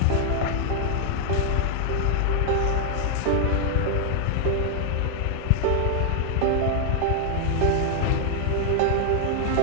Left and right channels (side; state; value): both; different; correlation 0.00